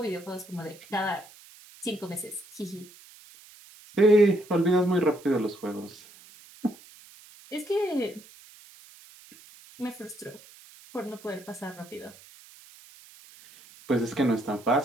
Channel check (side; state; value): right; noise; hiss, 22 dB below the sound